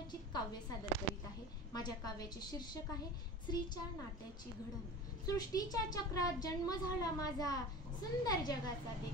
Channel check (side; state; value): both; normal; correlation 0.34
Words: काव्य सादर करीत आहे। माझ्या काव्याचे शीर्षक आहे स्त्रीच्या नात्याची घडण। सृष्टीच्या चक्रात जन्म झाला माझा, सुंदर जगाचा